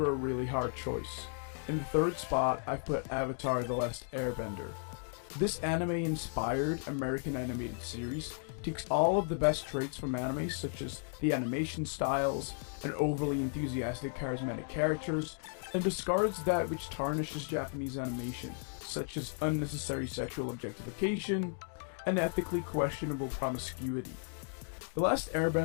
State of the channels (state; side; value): silent; right; 55 dB below the other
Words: a really hard choice. In the third spot, I've put Avatar: The Last Airbender. This anime-inspired American animated series takes all of the best traits from anime, such as the animation styles and overly enthusiastic charismatic characters, and discards that which tarnishes Japanese animation, such as unnecessary sexual objectification and ethically questionable promiscuity. The Last